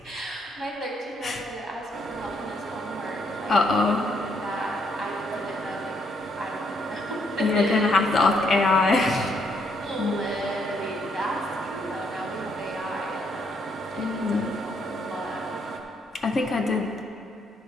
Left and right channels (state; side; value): normal; both; correlation 0.72